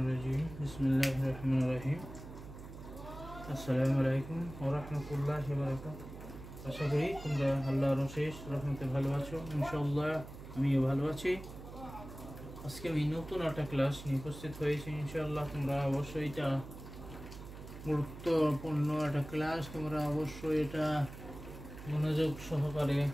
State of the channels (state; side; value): noise; right; hum, 13 dB below the sound